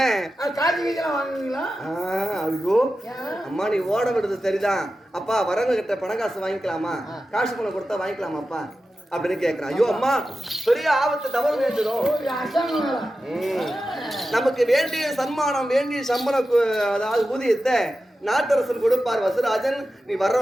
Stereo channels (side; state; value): both; normal; correlation 0.92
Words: ஐயோ அம்மா நீ ஓட விடுறது சரிதான் அப்பா, வரவங்க கிட்ட பணம் காசு வாங்கிக்கலாமா, காசு பணம் கொடுத்தா வாங்கிக்கலாமா அப்பா அப்படின்னு கேட்கிறான். ஐயோ அம்மா பெரிய ஆபத்து தவறு நேர்ந்துடும், நமக்கு வேண்டிய சன்மானம் வேண்டிய சம்பளம் அதாவது ஊதியத்தை நாட்டரசன் கொடுப்பார் வசராஜன், நீ